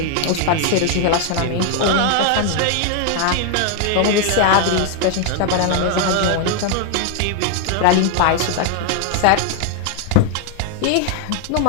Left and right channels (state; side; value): different; both; correlation 0.00